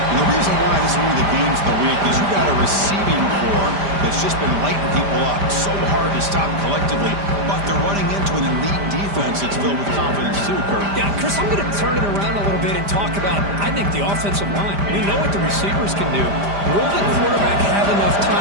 And the reason why this is one of the games of the week is you've got a receiving core that's just been lighting people up. So hard to stop collectively, but they're running into an elite defense that's filled with confidence too, Kirk. Yeah, Chris, I'm going to turn it around a little bit and talk about, I think, the offensive line. We know what the receivers can do. Will the quarterback have enough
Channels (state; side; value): late; left; 5.0 ms